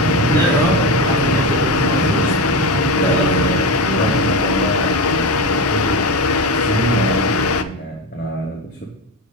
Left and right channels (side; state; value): both; normal; correlation 0.19